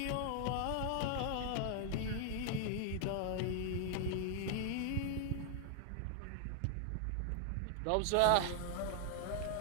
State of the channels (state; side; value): different; both; correlation 0.00